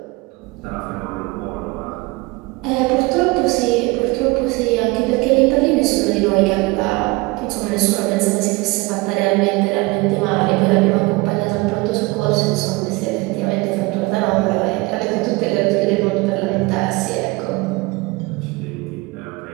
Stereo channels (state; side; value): quieter; left; 23.8 dB